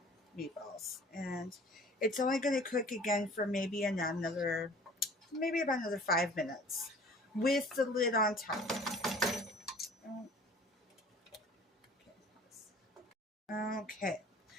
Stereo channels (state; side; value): normal; both; correlation 0.48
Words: meatballs. And it's only going to cook again for maybe about another 5 minutes with the lid on top. Okay,